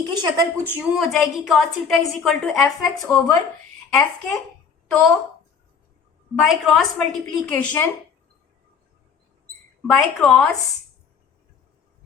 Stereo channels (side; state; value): right; quieter; 6.2 dB